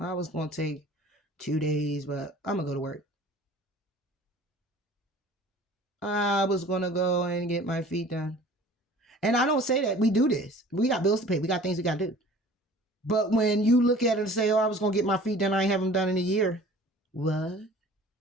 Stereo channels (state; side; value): normal; both; correlation 0.47